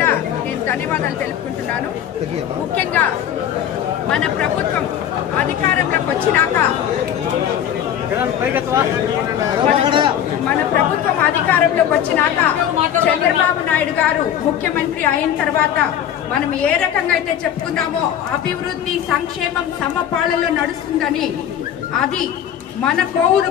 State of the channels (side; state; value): right; quieter; 10.0 dB